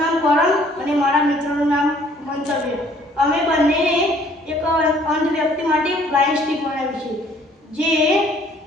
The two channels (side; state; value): both; normal; correlation 0.59